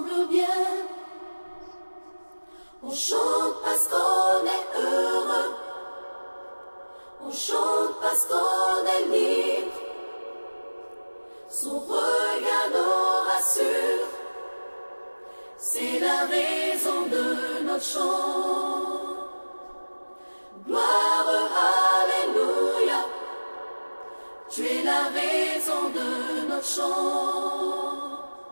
bien. On chante parce qu'on est heureux, on chante parce qu'on est libre. Son regard nous rassure, c'est la raison de notre chant. Gloire, alléluia, tu es la raison de notre chant.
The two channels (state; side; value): inverted; both; correlation -1.00